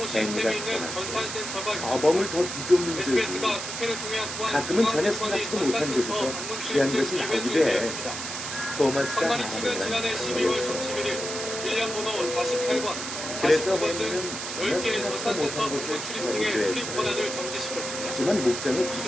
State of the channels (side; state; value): right; noise; hiss, 6 dB below the sound